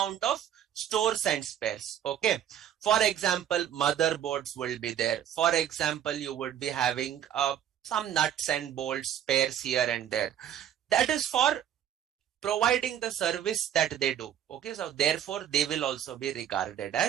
of stores and spares. Okay, for example, motherboards will be there. For example, you would be having some nuts and bolts, spares here and there. That is for providing the service that they do. Okay, so therefore they will also be regarded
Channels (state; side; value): quieter; left; 10.1 dB